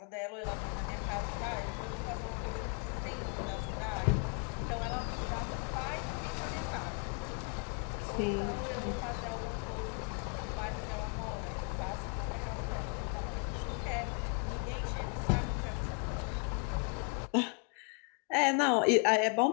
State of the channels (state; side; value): quieter; right; 39.1 dB